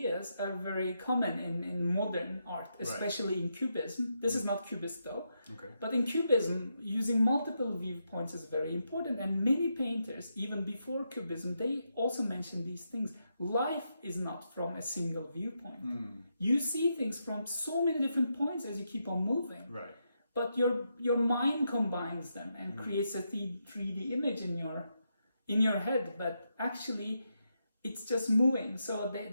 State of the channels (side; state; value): both; inverted; correlation -0.83